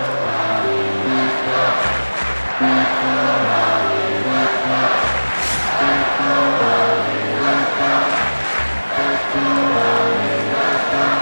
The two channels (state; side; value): inverted; both; correlation -1.00